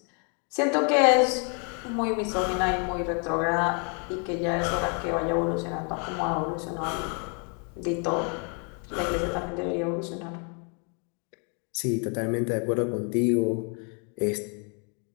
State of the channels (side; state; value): right; quieter; 38.0 dB